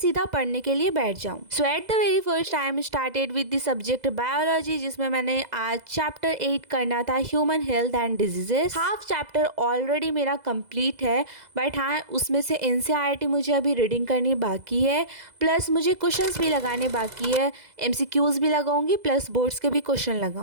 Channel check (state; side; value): late; left; 2.0 ms